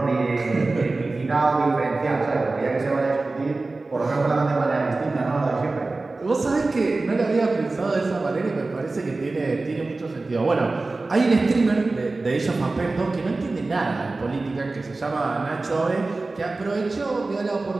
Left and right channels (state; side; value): quieter; left; 3.4 dB